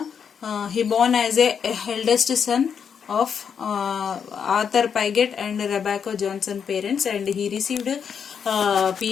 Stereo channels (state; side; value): quieter; right; 7.1 dB